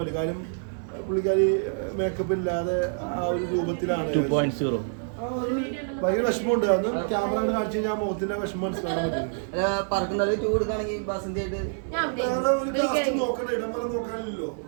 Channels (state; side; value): silent; left; 60 dB below the other